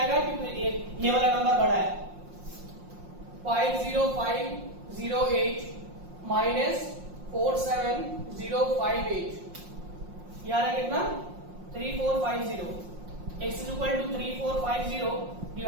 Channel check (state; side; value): late; left; 5.6 ms